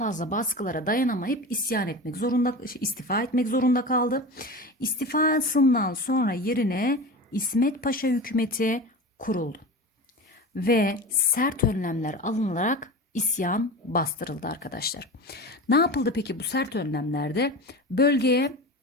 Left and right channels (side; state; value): both; normal; correlation 0.30